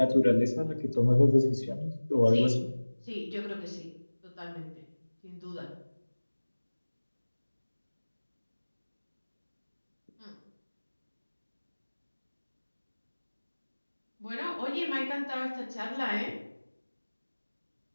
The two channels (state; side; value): inverted; both; correlation -1.00